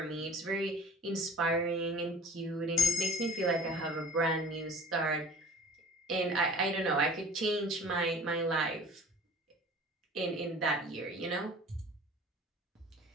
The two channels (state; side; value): normal; both; correlation 0.44